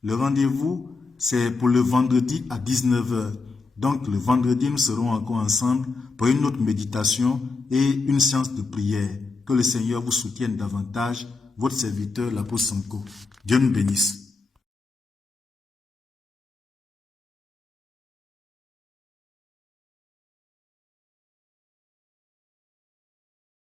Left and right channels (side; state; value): right; quieter; 4.0 dB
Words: Le rendez-vous, c'est pour le vendredi à 19h. Donc le vendredi, nous serons encore ensemble pour une autre méditation et une séance de prière. Que le Seigneur vous soutienne davantage. Votre serviteur, l'apôtre Sanko. Dieu nous bénisse.